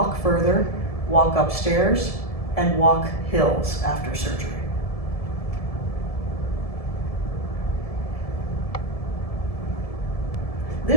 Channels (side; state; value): right; late; 1.7 ms